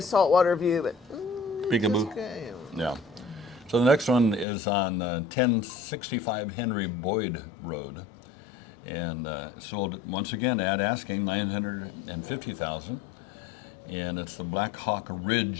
saltwater view, but Peekaboo. okay. Yeah. So the next one is on 1065 Henry Boyd Road, and sold once again at asking $950,000, and it's the Black Hawk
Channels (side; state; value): right; drops out; at 4.5 s